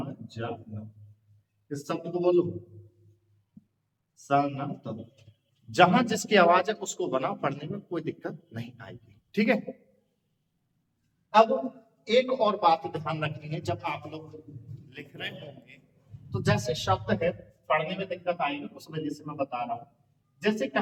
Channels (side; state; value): both; identical; correlation 1.00